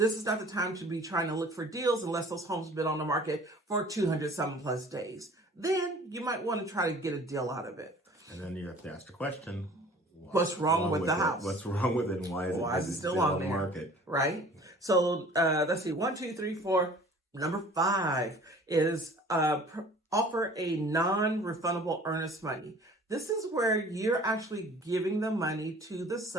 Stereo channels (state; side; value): normal; both; correlation 0.48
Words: is not the time to be trying to look for deals unless those homes have been on the market for 200 some plus days. Then you might want to try to get a deal out of it. And then you have to ask the question, what's wrong with the house? What's wrong with it, and why is it still on the market? Right? So let's see, 1, 2, 3, 4. Number 5 is offer a non-refundable earnest money. This is where you're actually giving the money to the